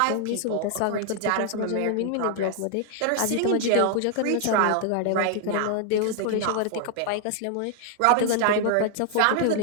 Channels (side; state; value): both; different; correlation 0.00